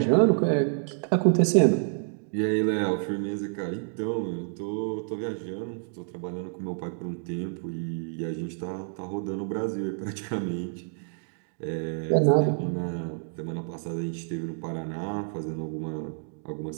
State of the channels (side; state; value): left; silent; digital silence